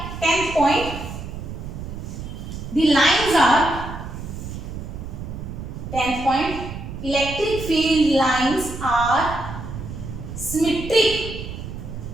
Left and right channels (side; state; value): right; noise; rumble, 8 dB below the sound